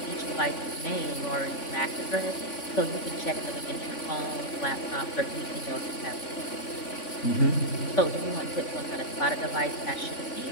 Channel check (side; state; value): right; late; 3.5 ms